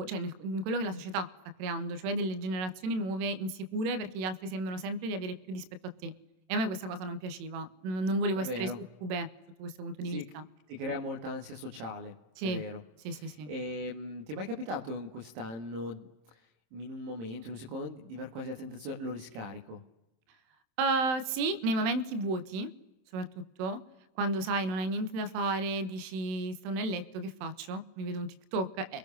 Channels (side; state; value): left; late; 27 ms